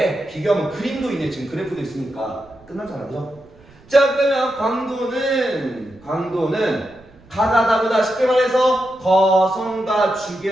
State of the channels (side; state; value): right; noise; rumble, 27 dB below the sound